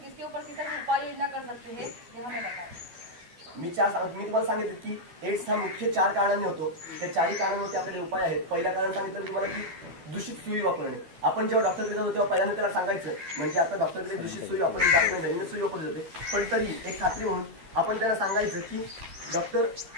ऊपर किस तरह से उपाय योजना कर सकते हैं, ये हमें बताएं. मी तुम्हाला सांगितलं की एड्स हा मुख्य 4 कारणांनी होतो. त्या 4 कारणांवरती आपल्याला उपाय आहेत. पहिला कारण सांगितलं तुम्हाला की दूषित सुई वापरणे. आपण जेव्हा डॉक्टरकडे जातो तेव्हा पहिल्यांदा त्याला सांगायचं, म्हणजे आता डॉक्टरकडे दूषित सुई वापरली जात नाही, नवीन सुई वापरली जाते, पण तरी एक खात्री म्हणून आपण त्यांना सांगायचं की डॉक्टर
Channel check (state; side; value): late; left; 12 ms